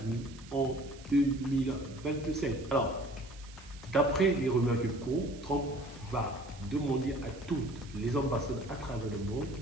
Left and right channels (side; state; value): right; noise; hiss, 21 dB below the sound